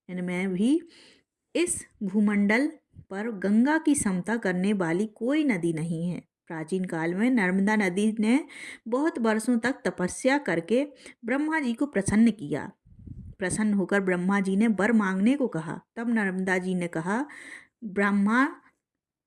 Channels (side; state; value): both; identical; correlation 1.00